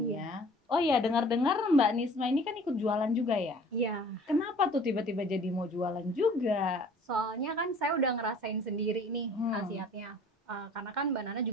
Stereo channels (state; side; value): normal; both; correlation 0.50